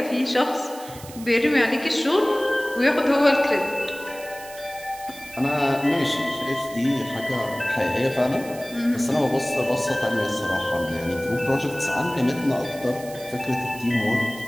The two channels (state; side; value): noise; right; hiss, 17 dB below the sound